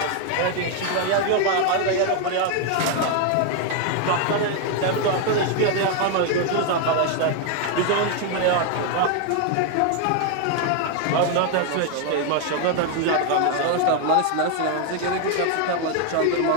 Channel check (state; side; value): different; both; correlation 0.01